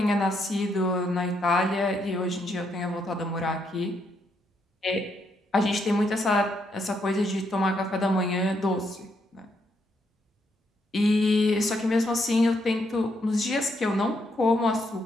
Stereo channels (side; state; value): both; normal; correlation 0.76